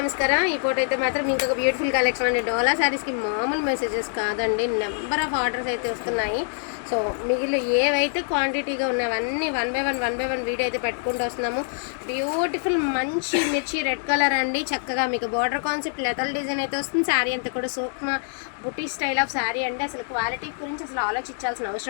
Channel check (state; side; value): silent; right; digital silence